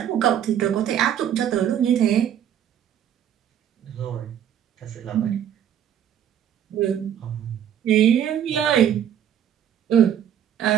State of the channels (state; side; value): quieter; left; 9.7 dB